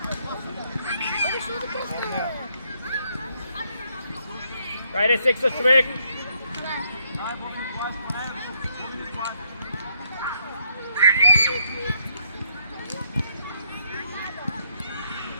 Хайде секса човек!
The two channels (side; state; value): both; inverted; correlation -0.73